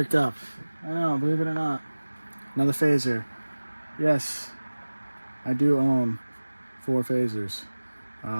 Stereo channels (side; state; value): both; inverted; correlation -1.00